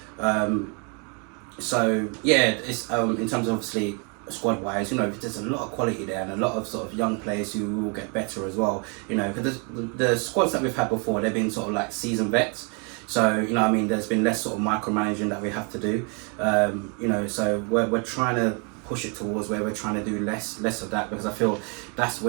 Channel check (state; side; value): quieter; left; 35.8 dB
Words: yeah, it's in terms of obviously squad wise, there's a lot of quality there, and a lot of sort of young players who will get better as well. Because the squads that we've had before, they've been sort of like seasoned vets. So there's been less sort of micromanaging that we have to do. So we're trying to push it towards where we're trying to do less of that, because I feel that's